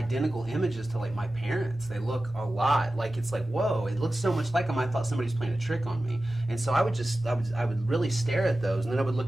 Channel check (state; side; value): normal; both; correlation 0.95